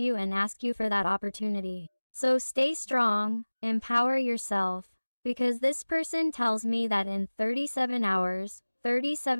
and ask you for that opportunity. So stay strong, empower yourself, because this person tells me that in 37 hours,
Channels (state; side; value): inverted; both; correlation -1.00